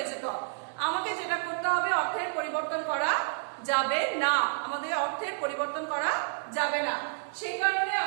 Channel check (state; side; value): silent; left; digital silence